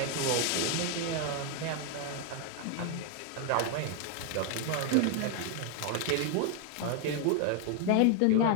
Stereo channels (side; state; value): both; different; correlation 0.00